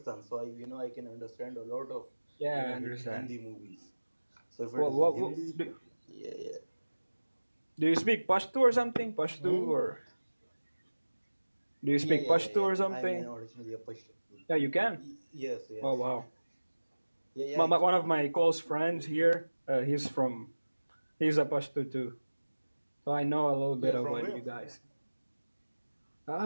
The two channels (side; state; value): both; inverted; correlation -1.00